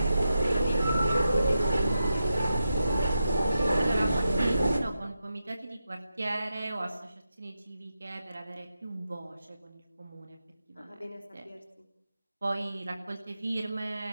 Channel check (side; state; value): both; inverted; correlation -0.88